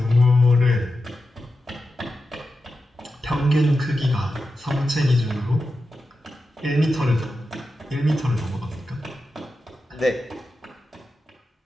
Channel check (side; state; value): both; normal; correlation 0.90